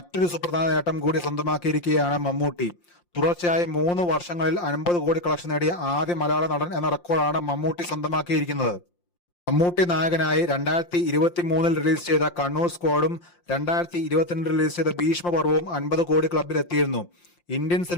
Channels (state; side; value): late; right; 5.7 ms